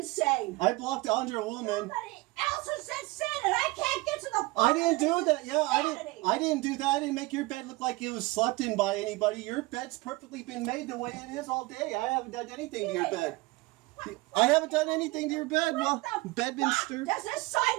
I blocked Andrea Woolman. Somebody else was insane, and I can't get to the. I didn't do that. Yeah, Insanity. I didn't do that. I didn't make your bed look like it was slept in by anybody. Your bed's perfectly been made the way it is all day. I haven't done anything to your bed. I haven't done anything to your bed. Well, What the bed been fuck stirred. does this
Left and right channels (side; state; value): left; quieter; 22.2 dB